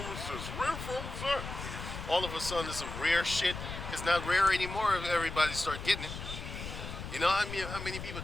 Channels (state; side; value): noise; left; rumble, 8 dB below the sound